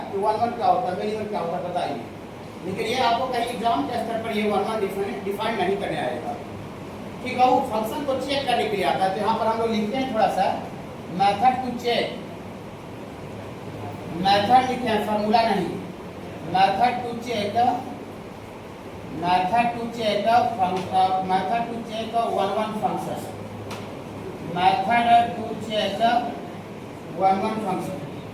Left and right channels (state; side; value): identical; both; correlation 1.00